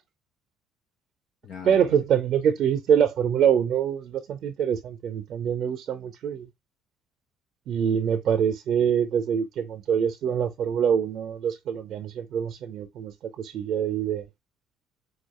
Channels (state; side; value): quieter; left; 8.0 dB